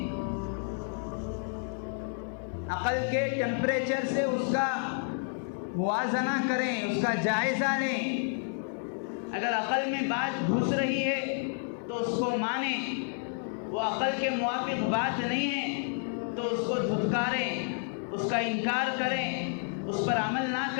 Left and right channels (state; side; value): silent; right; 58 dB below the other